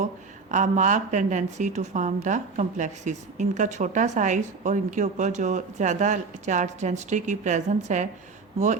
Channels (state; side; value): quieter; left; 4.5 dB